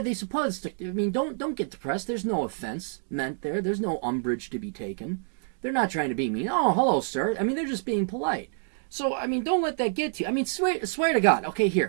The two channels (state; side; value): silent; left; digital silence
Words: they supposed to? I mean, don't get depressed. There's no offense meant there. There's no umbrage to be taken. They're not trying to be mean. Oh, hello, sir. I mean, they're just being polite. So, I mean, don't let that get to you. I mean, swear to God. Okay,